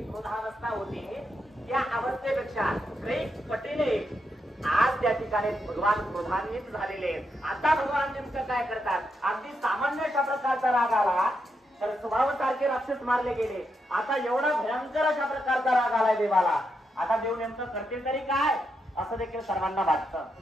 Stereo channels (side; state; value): both; normal; correlation 0.83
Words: क्रोधावस्था होती त्या अवस्थेपेक्षा कैक पटीने आज त्या ठिकाणी भगवान क्रोधान्वित झालेले. आता भगवान नेमकं काय करतात? अगदी सामान्य अशा प्रकारचा राग आला तर स्वभावासारखे राक्षस मारले गेले. आता एवढा भयंकर अशा प्रकारचा राग आलाय देवाला. आता देव नेमकं करते तरी काय असं देखील सर्वांना वाटतं.